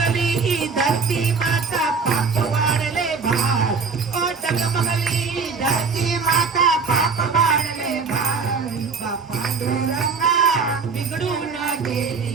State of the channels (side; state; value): left; quieter; 5.0 dB